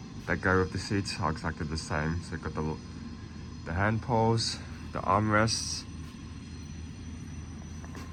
that go with the seats are exactly the same. So you've got the hand poles, the armrests,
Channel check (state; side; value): identical; both; correlation 1.00